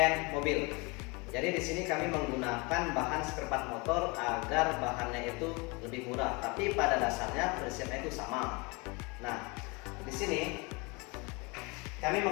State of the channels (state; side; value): quieter; right; 28.2 dB